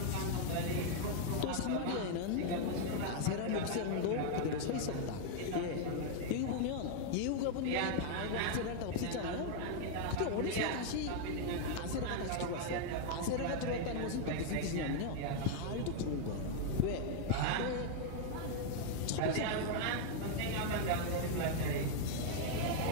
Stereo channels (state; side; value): different; both; correlation 0.00